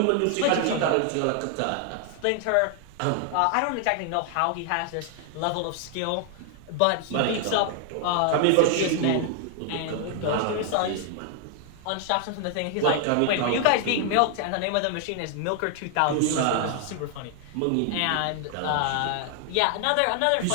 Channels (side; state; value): both; different; correlation 0.00